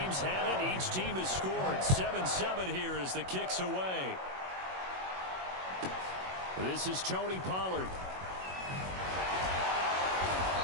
had it. Each team has scored. 7-7 here as the kick's away. This is Tony Pollard.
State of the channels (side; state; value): left; late; 21 ms